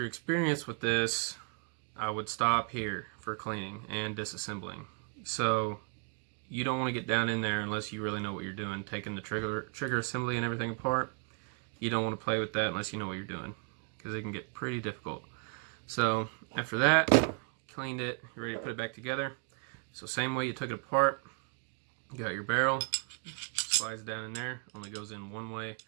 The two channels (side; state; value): left; quieter; 38.2 dB